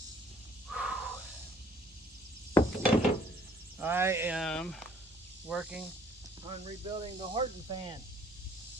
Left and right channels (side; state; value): both; normal; correlation 0.60